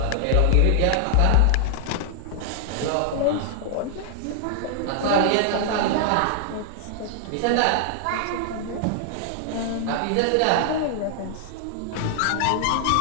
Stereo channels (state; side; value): different; both; correlation 0.00